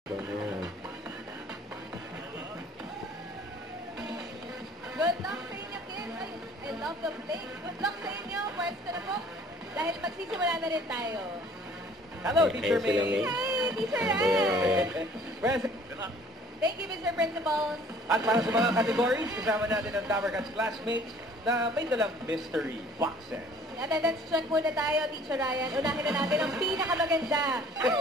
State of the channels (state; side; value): normal; both; correlation 0.54